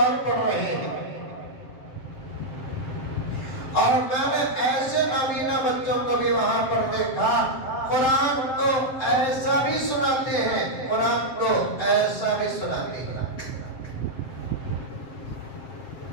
پڑھ رہے ہیں اور میں نے ایسے نابینا بچوں کو بھی وہاں پر دیکھا قرآن کو ایسا بھی سناتے ہیں قرآن کو ایسا بھی سناتے ہیں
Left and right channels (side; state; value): right; late; 7.6 ms